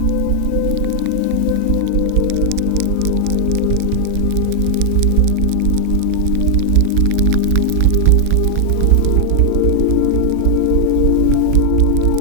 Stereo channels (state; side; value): different; both; correlation 0.00